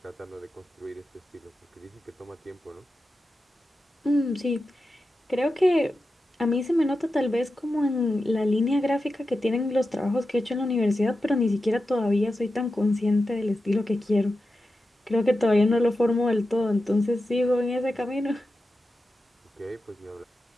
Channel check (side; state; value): both; normal; correlation 0.91